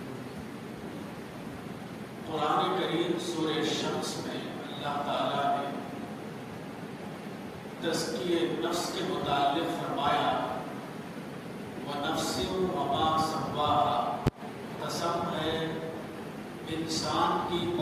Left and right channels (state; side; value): identical; both; correlation 1.00